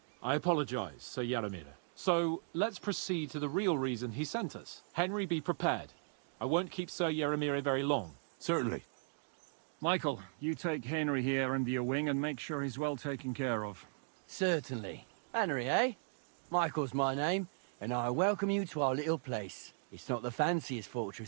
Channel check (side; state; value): left; silent; digital silence